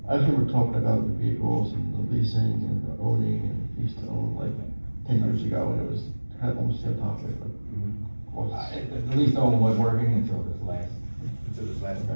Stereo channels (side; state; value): both; inverted; correlation -1.00